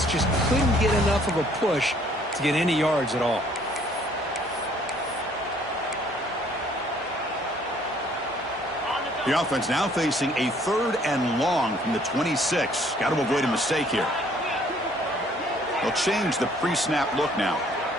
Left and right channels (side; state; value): both; normal; correlation 0.61